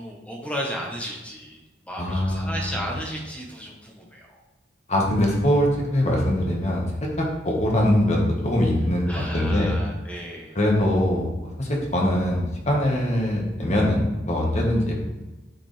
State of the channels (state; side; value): normal; both; correlation 0.76